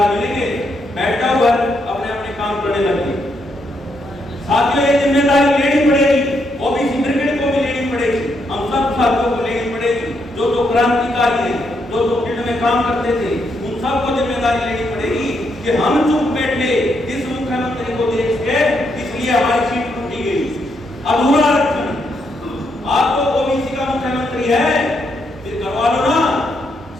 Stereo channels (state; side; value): normal; both; correlation 0.78